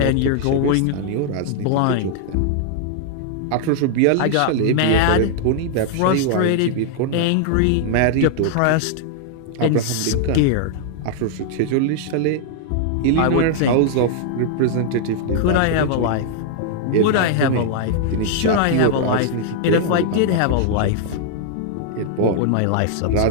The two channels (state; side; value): different; both; correlation 0.00